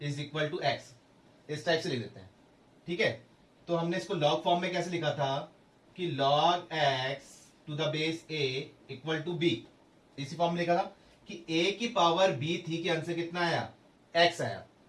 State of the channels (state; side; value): identical; both; correlation 1.00